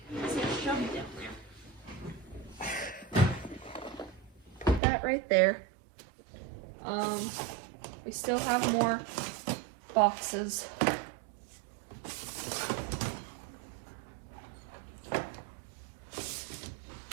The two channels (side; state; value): left; drops out; at 4.8 s